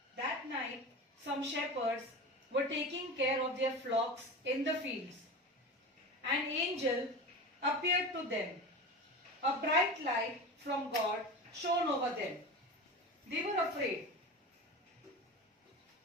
That night, some shepherds were taking care of their flocks in the fields. An angel appeared to them. A bright light from God shone over them. They were afraid.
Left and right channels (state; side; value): normal; both; correlation 0.29